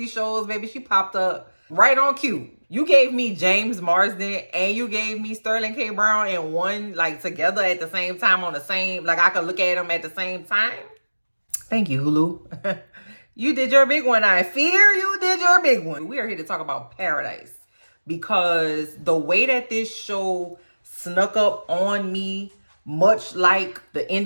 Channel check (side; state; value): both; inverted; correlation -1.00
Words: shows. Baby, she popped up right on cue. You gave me James Marsden and you gave me Sterling K. Brown in one, like, together at the same time on the same, like, I could look at them at the same time. Thank you, Hulu. You did your big one. I fear you did your big one. We are here to talk about Paradise because the way that this show snuck up on me, much like the end